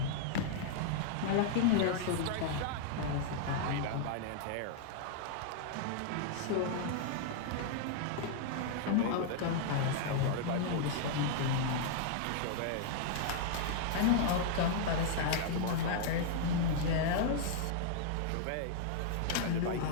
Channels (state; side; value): different; both; correlation -0.01